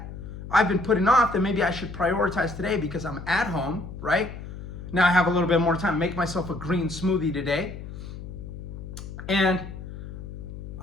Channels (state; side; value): noise; left; hum, 11 dB below the sound